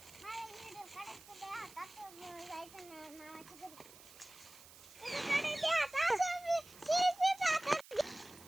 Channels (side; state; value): right; noise; hiss, 19 dB below the sound